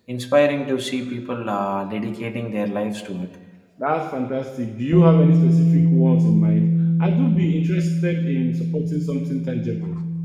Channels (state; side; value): identical; both; correlation 1.00